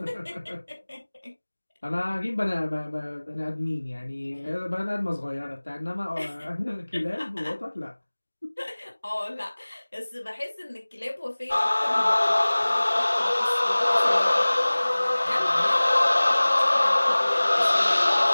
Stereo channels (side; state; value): both; inverted; correlation -1.00